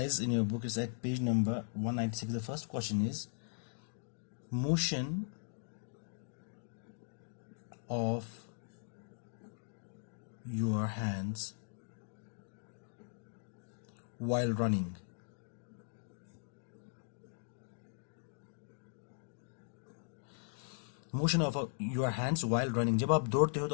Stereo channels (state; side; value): silent; right; digital silence